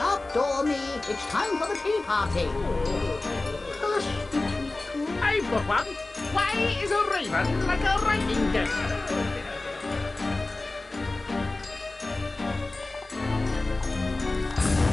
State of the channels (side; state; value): right; quieter; 3.1 dB